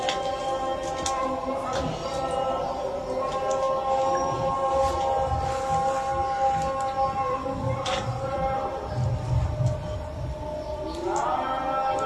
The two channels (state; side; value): identical; both; correlation 1.00